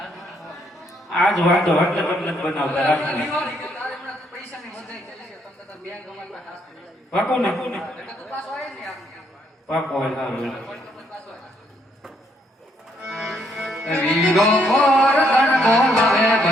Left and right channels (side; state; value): both; normal; correlation 0.72